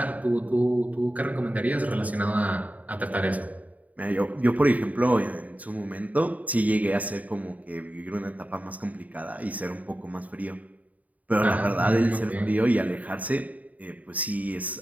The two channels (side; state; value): left; late; 0.072 ms